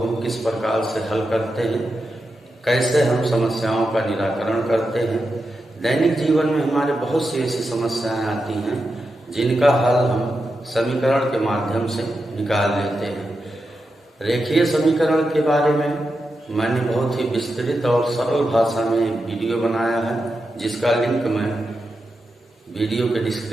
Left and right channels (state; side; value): normal; both; correlation 0.88